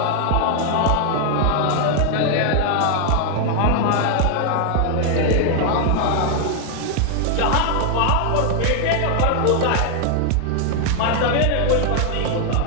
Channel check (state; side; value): different; both; correlation 0.00